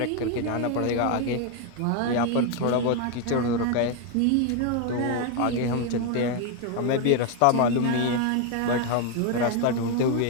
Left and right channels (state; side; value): different; both; correlation 0.01